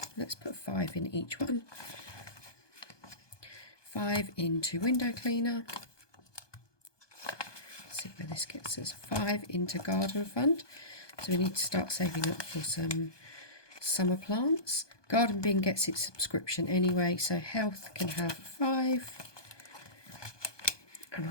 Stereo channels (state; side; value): late; right; 1.2 ms